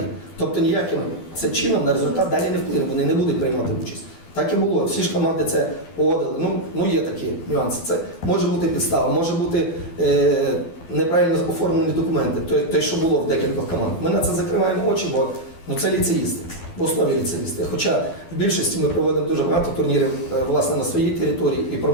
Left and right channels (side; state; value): right; late; 12 ms